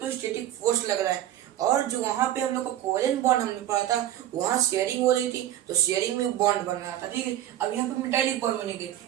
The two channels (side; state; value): left; quieter; 12.3 dB